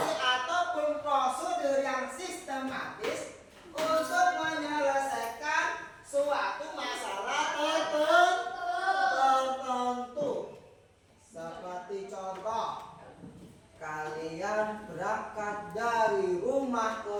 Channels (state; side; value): identical; both; correlation 1.00